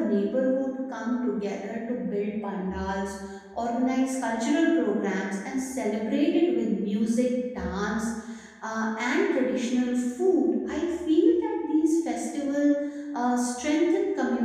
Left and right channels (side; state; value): both; identical; correlation 1.00